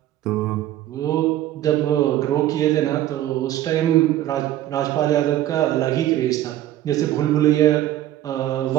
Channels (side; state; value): left; quieter; 13.3 dB